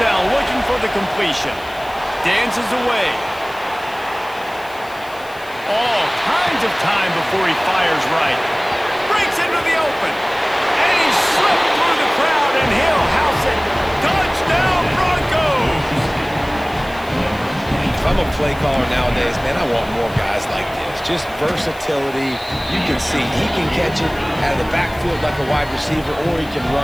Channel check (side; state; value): left; noise; hiss, 22 dB below the sound